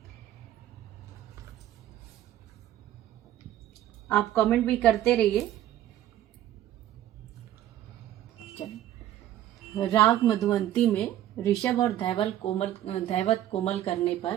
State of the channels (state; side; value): quieter; left; 12.6 dB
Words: आप कमेंट भी करते रहिए। राग मधुवंती में ऋषभ और धैवत कोमल करने